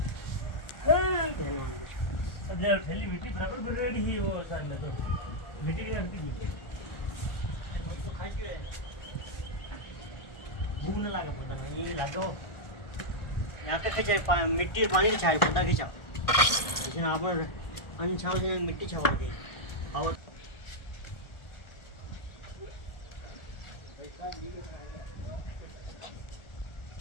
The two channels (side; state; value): right; late; 1.4 ms